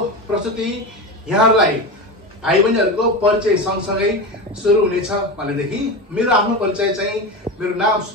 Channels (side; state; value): both; normal; correlation 0.22